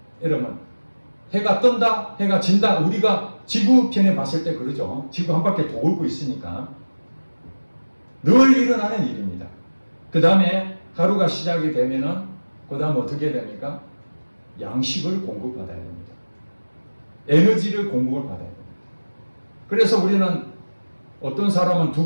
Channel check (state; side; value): inverted; both; correlation -1.00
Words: 여러분 해가 뜬다, 해가 진다. 우리가 지구편에 봤을 때 그러죠. 지구 한 바퀴 돌고 있으니까 늘 일어나는 일입니다. 그 다음에 하루가 시작이 되면은 그 다음 어떻게 됩니까? 양식을 공급받아야 됩니다. 에너지를 공급을 받아야 됩니다. 그래서 우리는 어떤 사람은